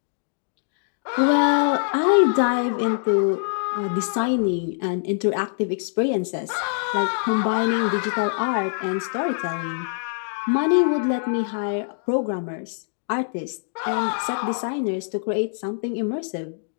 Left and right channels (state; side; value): silent; right; digital silence